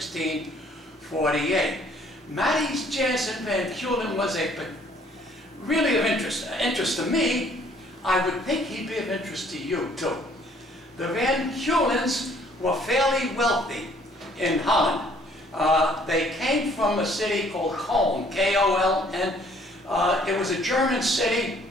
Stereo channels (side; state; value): both; normal; correlation 0.60